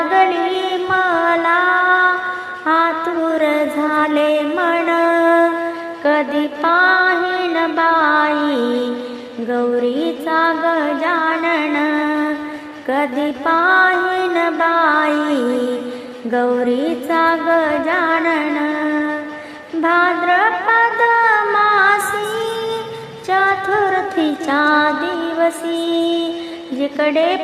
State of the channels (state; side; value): identical; both; correlation 1.00